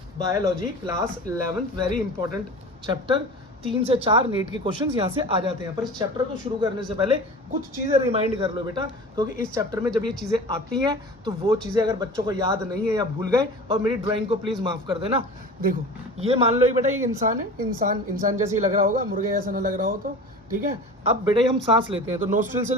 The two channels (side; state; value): both; normal; correlation 0.36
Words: biology, class 11th। Very important chapter. 3 से 4 नीट के क्वेश्चंस यहाँ से आ जाते हैं। पर इस चैप्टर को शुरू करने से पहले कुछ चीज़ें रिमाइंड कर लो बेटा, क्योंकि इस चैप्टर में जब ये चीज़ें आती हैं तो वो चीज़ें अगर बच्चों को याद नहीं है या भूल गए, और मेरी ड्राइंग को प्लीज़ माफ़ कर देना। देखो ये मान लो बेटा, ये इंसान है, इंसान जैसे ही लग रहा होगा, मुर्गे जैसा ना लग रहा हो तो ठीक है। अब बेटा हम सांस लेते हैं तो नोस्ट्रिल से